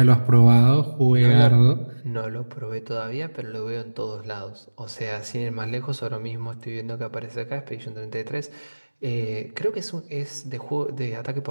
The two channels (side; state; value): both; inverted; correlation -1.00